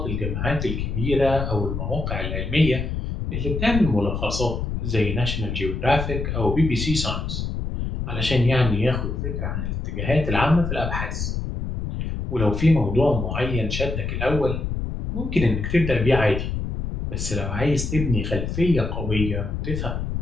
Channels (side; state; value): left; noise; rumble, 3 dB below the sound